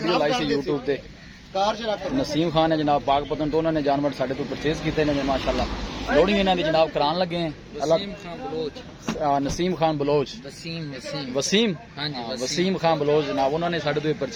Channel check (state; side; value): identical; both; correlation 1.00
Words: लाई सी यूट्यूब पे। नसीम खान है जनाब पाकपतन तो उन्होंने जानवर साढ़े तो परचेज किए हैं माशाल्लाह। लोडिंग इन्होंने जनाब करान लगे हैं। नसीम खान बलोच, वसीम खान बलोच जनाब उन्होंने साढ़े तो